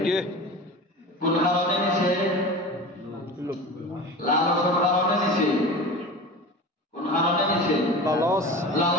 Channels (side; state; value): both; normal; correlation 0.33